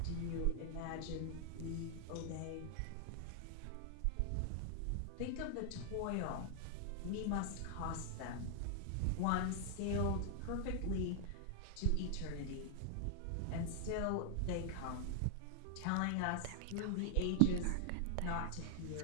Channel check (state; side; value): different; both; correlation 0.00